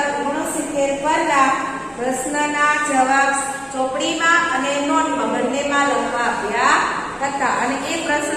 69 પરના પ્રશ્નના જવાબ ચોપડીમાં અને નોટમાં બંનેમાં લખવા આપ્યા હતા અને એ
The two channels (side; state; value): both; identical; correlation 1.00